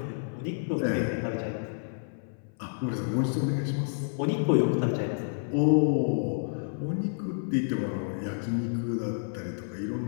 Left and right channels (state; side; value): silent; right; 56 dB below the other